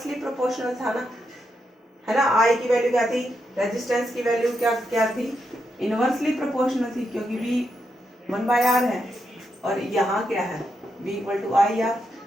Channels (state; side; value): normal; both; correlation 0.83